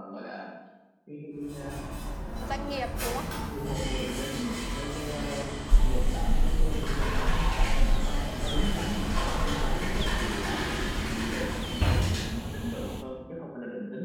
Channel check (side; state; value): both; identical; correlation 1.00